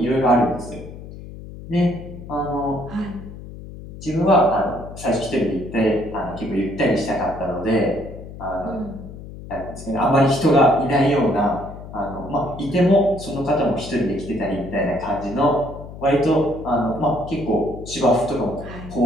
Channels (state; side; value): noise; left; hum, 13 dB below the sound